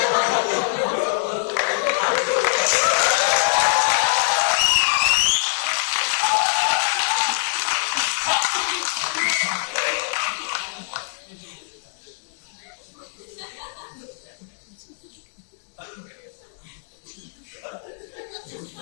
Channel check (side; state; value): right; silent; digital silence